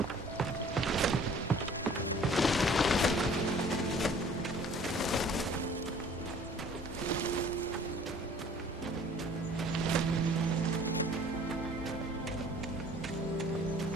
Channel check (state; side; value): normal; both; correlation 0.52